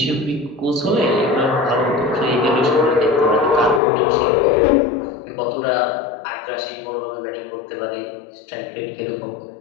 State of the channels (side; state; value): right; drops out; at 3.8 s